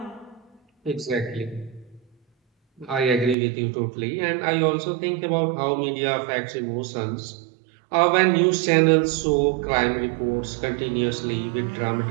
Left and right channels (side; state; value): left; drops out; at 3.4 s